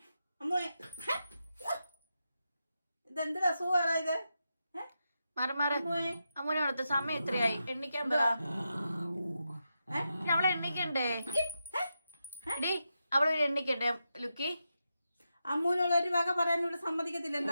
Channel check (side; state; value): both; inverted; correlation -0.87